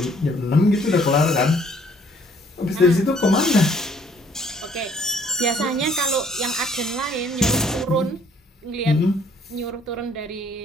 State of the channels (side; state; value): both; normal; correlation 0.61